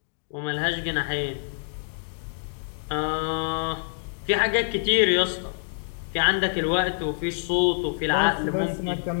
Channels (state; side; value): silent; right; digital silence